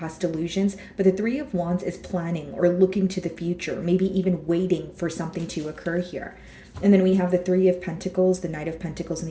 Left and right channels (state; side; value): identical; both; correlation 1.00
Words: illusions, but the Three of Wands is planning or looking to the future, maybe even waiting for something to occur here. And then we have the Three of Pentacles, the Knight of Pentacles, and